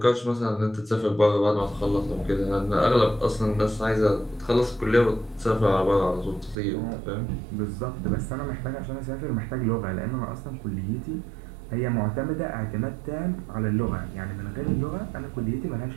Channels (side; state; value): left; drops out; at 6.6 s